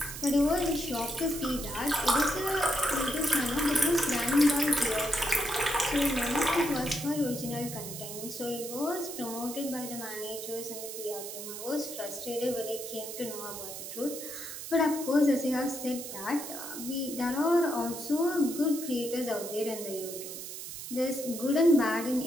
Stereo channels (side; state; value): right; noise; hiss, 9 dB below the sound